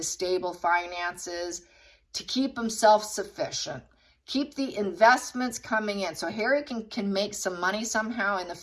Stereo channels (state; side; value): identical; both; correlation 1.00